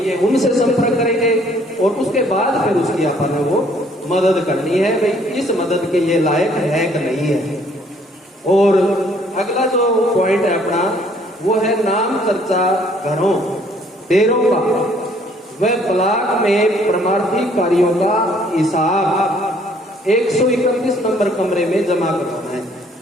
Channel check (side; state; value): both; normal; correlation 0.62